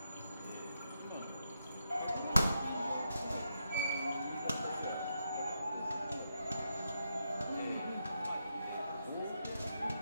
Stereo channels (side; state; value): both; inverted; correlation -0.83